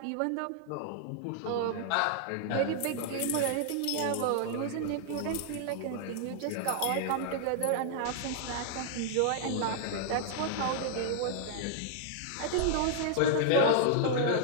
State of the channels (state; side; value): different; both; correlation -0.01